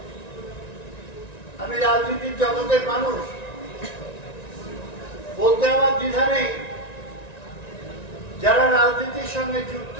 আমি রাজনীতির জগতের মানুষ, বলতে আমার দ্বিধা নেই, যারা রাজনীতির সঙ্গে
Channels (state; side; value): late; right; 1.9 ms